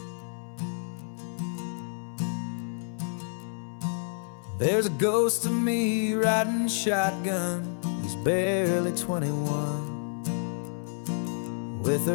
There's a ghost of me riding shotgun, he's barely 21, with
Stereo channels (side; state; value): right; silent; 58 dB below the other